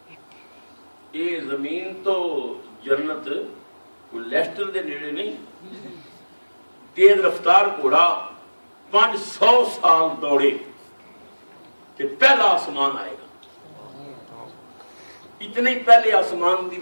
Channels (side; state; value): both; inverted; correlation -1.00